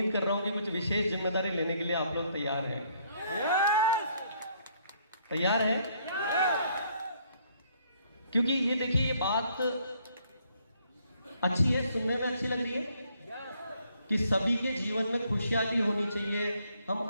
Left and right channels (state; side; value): inverted; both; correlation -0.67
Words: कर रहा हूं कि कुछ विशेष जिम्मेदारी लेने के लिए आप लोग तैयार हैं। तैयार हैं? क्योंकि ये देखिए, ये बात अच्छी है, सुनने में अच्छी लग रही है कि सभी के जीवन में खुशहाली होनी चाहिए, हम